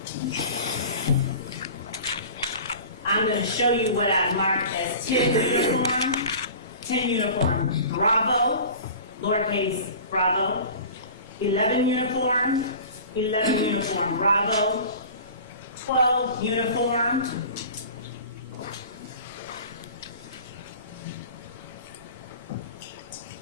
I'm going to show you what I've marked as 10 uniform. 10 uniform Bravo, lowercase Bravo. 11 uniform, 11 uniform Bravo. 12 uniform.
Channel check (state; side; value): inverted; both; correlation -0.40